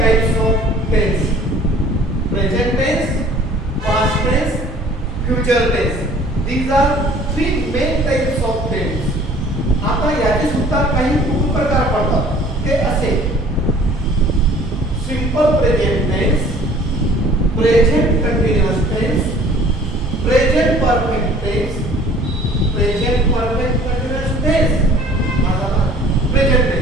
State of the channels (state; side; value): normal; both; correlation 0.52